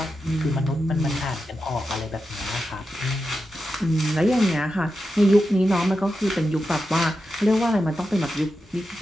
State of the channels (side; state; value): both; normal; correlation 0.89